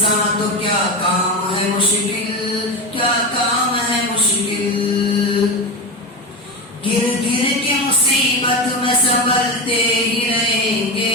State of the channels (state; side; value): normal; both; correlation 0.19